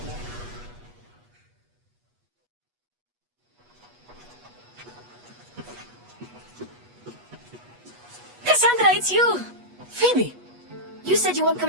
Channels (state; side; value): late; left; 8.2 ms